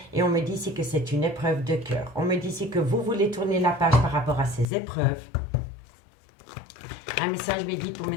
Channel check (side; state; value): right; drops out; at 4.7 s